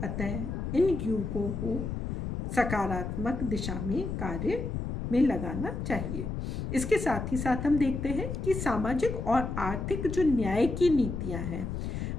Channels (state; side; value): noise; left; rumble, 4 dB below the sound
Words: अतः इन युवकों को सकारात्मक दिशा में कार्य में लगाना चाहिए। इसके साथ ही साथ हम देखते हैं कि सामाजिक और आर्थिक जो न्याय की नीतियां हैं